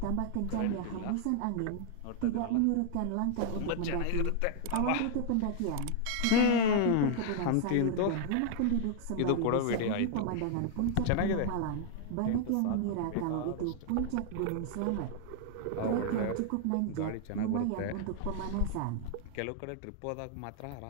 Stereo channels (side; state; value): both; different; correlation 0.00